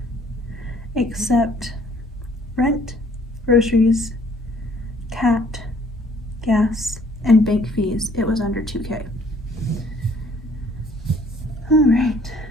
except rent, groceries, cat, gas, and bank fees, it was under 2K. All right,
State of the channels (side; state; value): both; normal; correlation 0.59